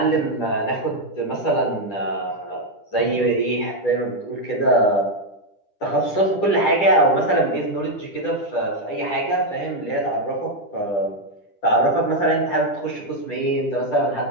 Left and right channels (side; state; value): right; late; 10 ms